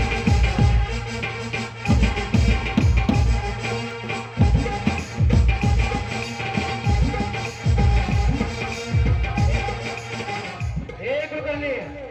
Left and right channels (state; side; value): identical; both; correlation 1.00